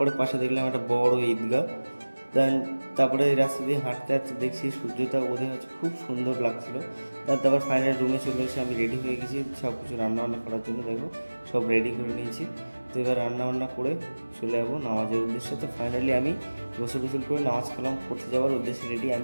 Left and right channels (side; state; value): both; inverted; correlation -1.00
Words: পাশে দেখলাম একটা বড় ঈদগাহ। দেন তারপরে এই রাস্তা দিয়ে হাঁটতে হাঁটতে দেখছি সূর্যটা উদয় হচ্ছে, খুব সুন্দর লাগছিল। দেন তারপর ফাইনালি রুমে চলে এসে আমি রেডি হয়ে গেছি সব কিছু রান্নাবান্না করার জন্য। দেখো সব রেডি করে নিয়েছি। তো এবার রান্নাবান্না করে চলে যাবো নামাজের উদ্দেশ্যে। তো ফাইনালি আমি গোসল টোসল করে নামাজ কালাম পড়তে যাওয়ার উদ্দেশ্যে রেডি।